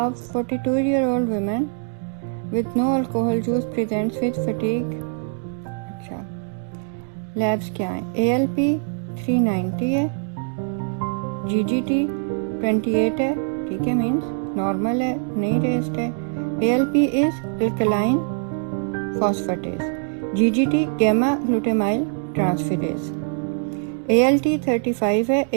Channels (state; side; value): silent; left; 63 dB below the other